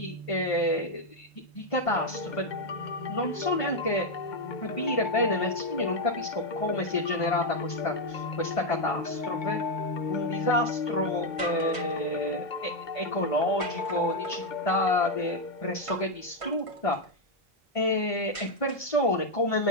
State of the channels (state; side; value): normal; both; correlation 0.02